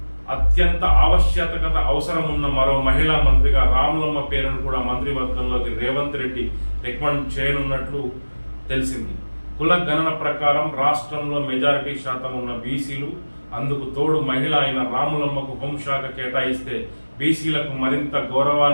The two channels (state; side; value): inverted; both; correlation -1.00